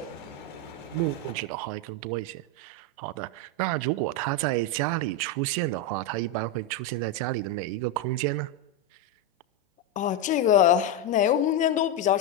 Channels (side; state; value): both; normal; correlation 0.07